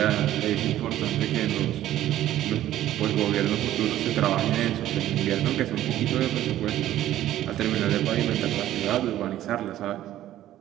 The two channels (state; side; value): quieter; left; 13.2 dB